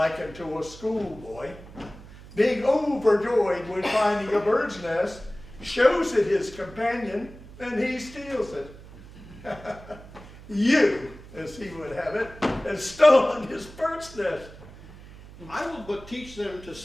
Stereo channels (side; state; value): right; noise; hum, 18 dB below the sound